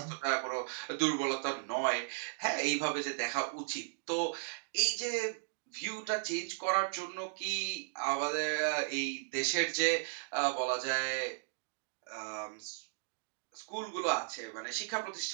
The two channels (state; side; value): silent; left; digital silence